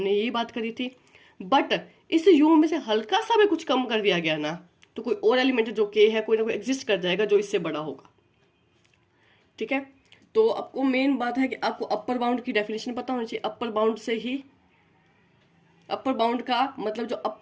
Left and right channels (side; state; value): both; identical; correlation 1.00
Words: यही बात करी थी। बट इस यू में से हल्का सा भी कुछ कम कर दिया गया ना, तो कोई और एलिमेंट जो के है कोई ना कोई एग्जिस्ट कर जाएगा जो इससे बड़ा होगा। ठीक है, तो आपको मेन बात है कि आपको अपर बाउंड की डेफिनेशन पता होनी चाहिए। अपर बाउंड से ही, अपर बाउंड का मतलब जो